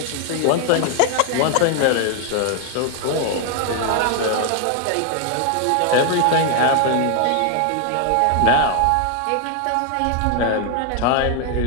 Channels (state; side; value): different; both; correlation 0.00